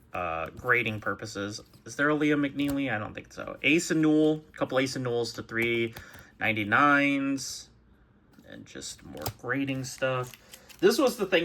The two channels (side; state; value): both; identical; correlation 1.00